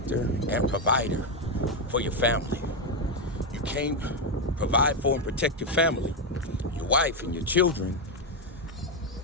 and provider for your family. You can't provide for and protect your family, your wife and your children,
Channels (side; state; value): both; normal; correlation 0.05